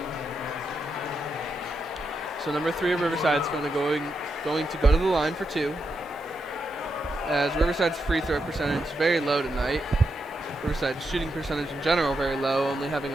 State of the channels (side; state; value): both; normal; correlation 0.84